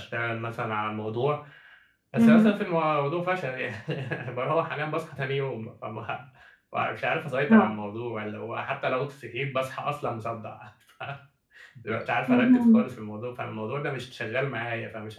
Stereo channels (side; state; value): both; identical; correlation 1.00